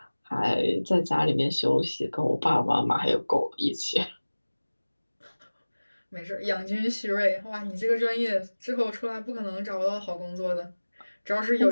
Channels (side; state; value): both; inverted; correlation -1.00